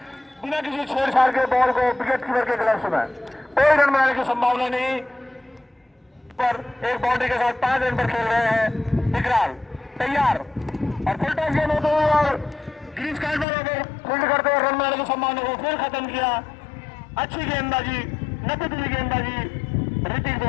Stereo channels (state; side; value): drops out; right; at 13.5 s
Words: बिना किसी छेड़छाड़ के बॉल को विकेट कीपर के ग्लव्स में। कोई रन बनाने की संभावना नहीं पर एक बाउंड्री के साथ 5 रन पर खेल रहे हैं विकराल तैयार और फुल टॉस गेंद होते हुए और ग्रीस कार्ड वालों को फील्ड करते हुए रन बनाने की संभावना को फिर खत्म किया। अच्छी गेंदबाजी नतीजी गेंदबाजी ऋतिक